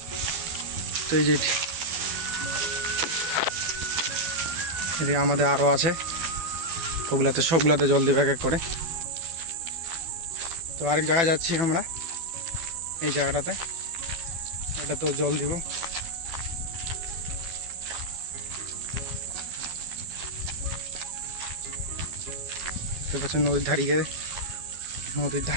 তো এই যে এদিকে আমাদের আরও আছে, ওগুলাতে সবগুলাতে জল দেবে এক এক করে। তো আরেক জায়গায় যাচ্ছি আমরা, এই জায়গাটাতে এটা তো জল দিব। দেখতে পাচ্ছেন নদীর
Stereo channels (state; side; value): late; left; 12 ms